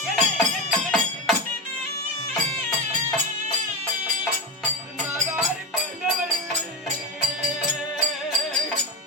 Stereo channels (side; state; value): both; normal; correlation 0.17